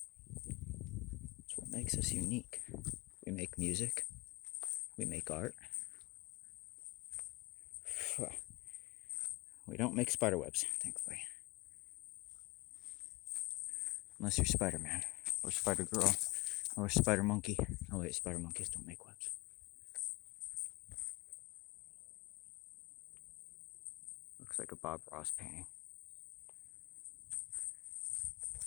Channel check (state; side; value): quieter; right; 22.9 dB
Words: It's what makes us unique. We make music. We make art. We don't make spider webs, thankfully. Unless you're Spider-Man, or Spider-Girl, or Spider-Monkey. Oh wait, Spider-Monkeys don't make webs. Looks like a Bob Ross painting.